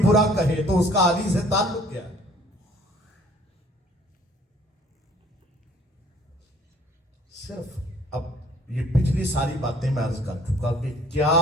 برا کہے تو اس کا علی سے تعلق کیا ہے؟ صرف اب یہ پچھلی ساری باتیں میں عرض کر چکا کہ کیا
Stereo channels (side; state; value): both; normal; correlation 0.55